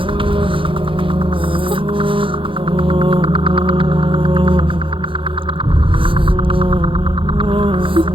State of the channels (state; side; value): late; left; 0.25 ms